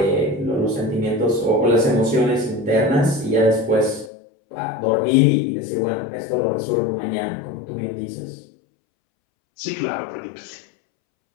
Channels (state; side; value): drops out; right; at 4.1 s